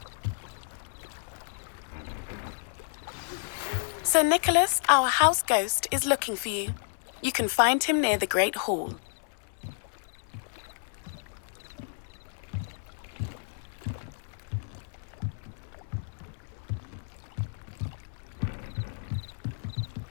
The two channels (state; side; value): silent; right; 57 dB below the other